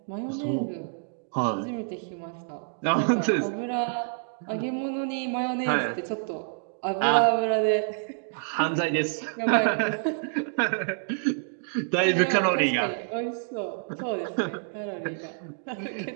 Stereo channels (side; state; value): left; silent; digital silence